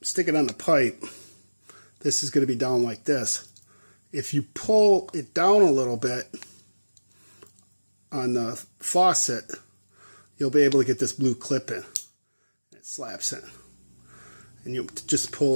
the pipe, this is going to be down like this. If you pull it down a little bit on the faucet, you'll be able to get this blue clip in. It slaps in. And you just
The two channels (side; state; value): both; inverted; correlation -1.00